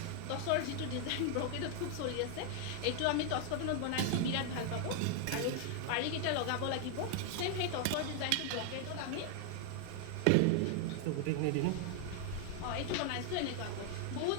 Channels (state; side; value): different; both; correlation 0.00